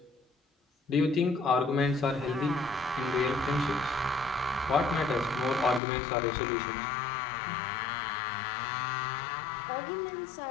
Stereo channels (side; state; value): right; drops out; at 5.8 s